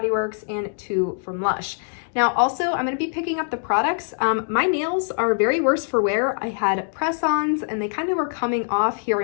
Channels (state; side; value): silent; right; digital silence